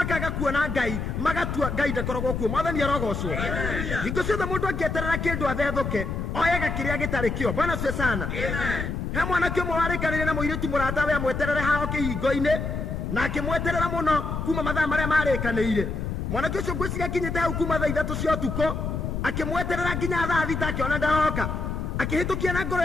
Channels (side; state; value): left; noise; rumble, 3 dB below the sound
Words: kuona Ngai magatua Ngai ndakoragwo kuo. Mwathani arogocwo. Hingo ciothe mũndũ angĩeterera kĩndũ athethũke oyaga kĩrĩa gĩtarĩ kĩo. Bwana cio sana. He mwanake ũmwe warĩkanĩire na mũirĩtu mũrata we amweterere hao kĩhingo-inĩ na akĩmweterera mũno kuma mathaa marĩa marĩkanĩire. Mwanake ũcio ngwĩciria akinyĩte hau kuma thaa 3 cia ũtukũ akĩmweterera nginya thaa 6 akĩona ndaroka akĩhĩtũkia na ngoro